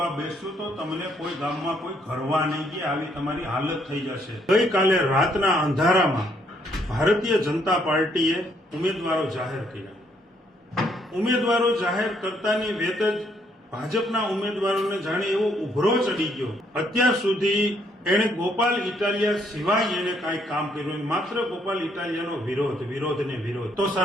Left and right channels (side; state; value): both; normal; correlation 0.70